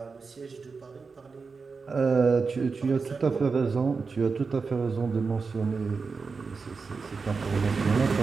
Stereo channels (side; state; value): left; quieter; 4.7 dB